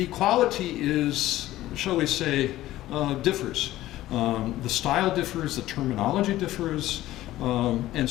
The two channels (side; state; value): right; quieter; 15.3 dB